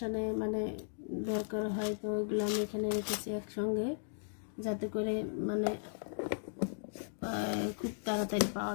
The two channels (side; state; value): right; silent; digital silence